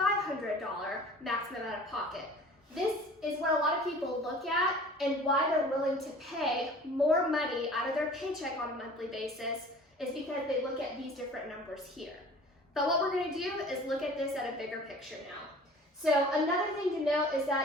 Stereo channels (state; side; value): normal; both; correlation 0.45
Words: maximum out-of-pocket. This is what a lot of people look at and why they're willing to pay more money out of their paycheck on a monthly basis is because they look at these different numbers here. But what we're going to do is look at this at a bigger picture now. So another thing to note is